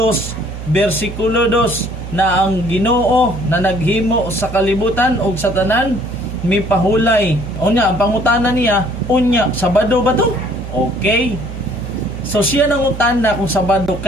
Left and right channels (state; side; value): noise; right; hum, 9 dB below the sound